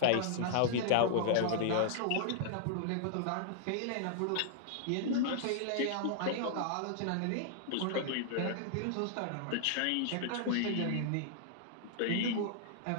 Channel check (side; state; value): both; different; correlation -0.01